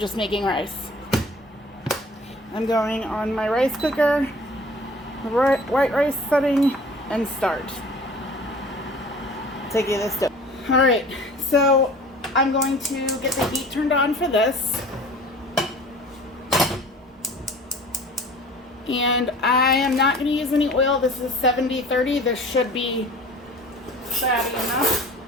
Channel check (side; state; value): both; normal; correlation 0.45